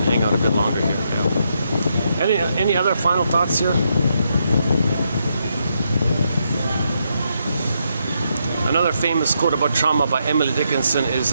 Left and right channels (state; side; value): inverted; both; correlation -0.80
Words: hang out a bit longer here. Yeah. Any other final thoughts here? Another famous quote about trauma by Emily Dickinson